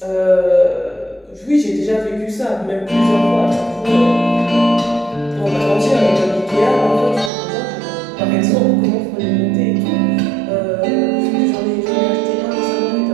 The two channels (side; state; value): left; drops out; at 7.3 s